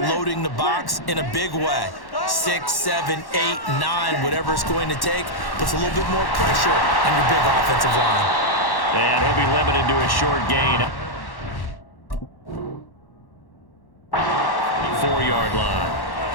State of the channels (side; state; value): right; late; 1.1 ms